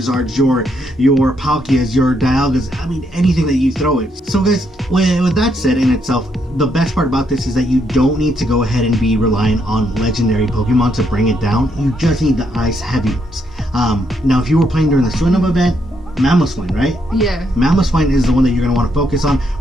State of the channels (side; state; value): both; normal; correlation 0.76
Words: your Palkias, your Dialgas, I mean anything that you throw it. So guys, with that said in itself, the best part about this is that you don't need to go ahead and be reliant on legendary Pokemon to bring it down. You just need the ice heavy ones. Now if you were playing during the Swinub event, Mamoswine, right? Yeah. Mamoswine is the one that you're going to want to focus on